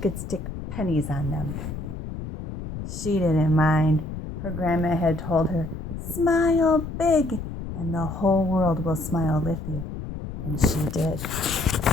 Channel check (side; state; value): left; noise; rumble, 8 dB below the sound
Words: stick pennies on them. She didn't mind. Her grandma had told her, "Smile big, and the whole world will smile with you." And she did.